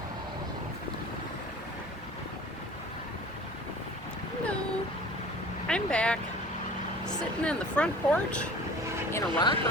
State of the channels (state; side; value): normal; both; correlation 0.43